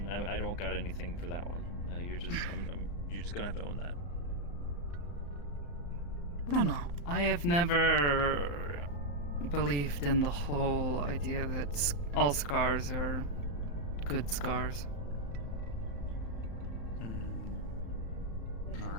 don't got anything for that one. You're just gonna have to own that. No. I have never believed in the whole idea that all scars are good scars.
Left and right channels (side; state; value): right; late; 35 ms